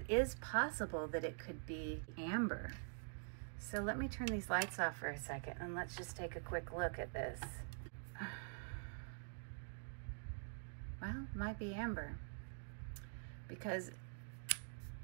is possible that it could be amber. So let me turn these lights off for a second and let's just take a quick look at this. Well, might be amber. because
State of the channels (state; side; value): silent; left; digital silence